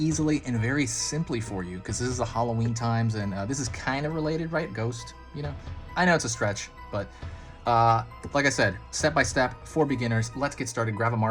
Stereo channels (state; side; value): identical; both; correlation 1.00